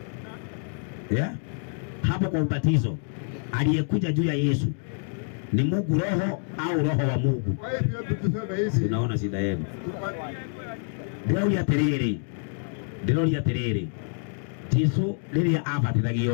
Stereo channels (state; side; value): silent; right; 60 dB below the other